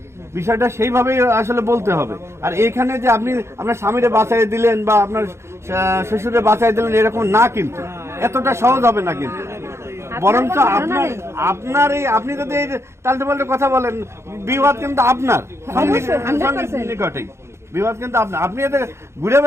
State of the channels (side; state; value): left; late; 0.13 ms